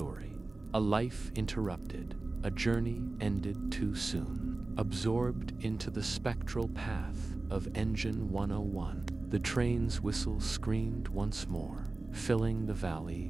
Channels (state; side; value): quieter; left; 3.2 dB